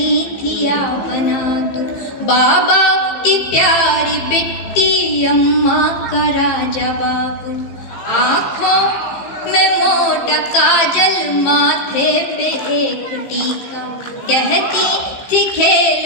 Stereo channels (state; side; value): late; right; 15 ms